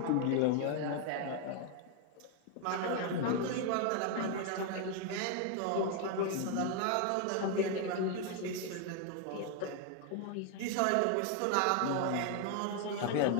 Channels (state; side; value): different; both; correlation 0.01